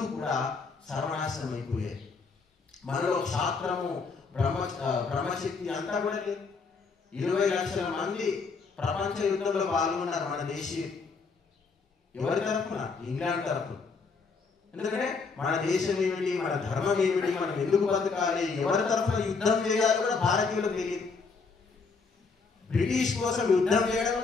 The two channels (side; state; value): right; quieter; 4.7 dB